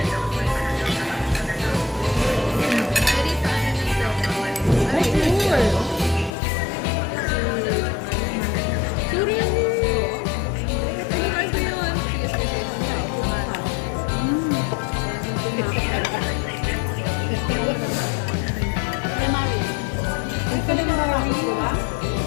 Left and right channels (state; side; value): drops out; right; at 6.3 s